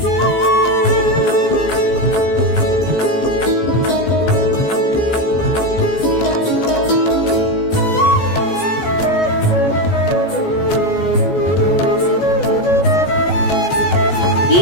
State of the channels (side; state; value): right; late; 14 ms